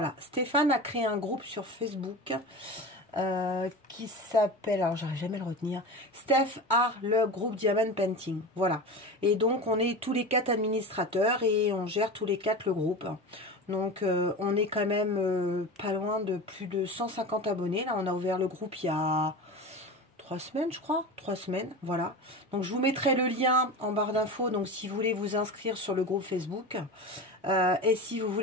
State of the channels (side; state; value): both; normal; correlation 0.28